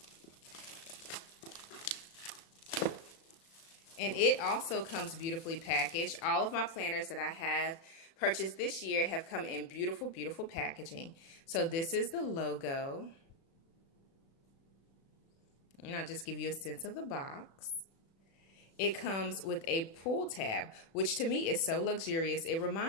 And it also comes beautifully packaged. All of my planners that I have purchased this year have come in beautiful, beautiful packaging. So this is the logo. And I'll just give you a sense of the box. It comes with a pull tab, which to me is so luxurious. It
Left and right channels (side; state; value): right; late; 36 ms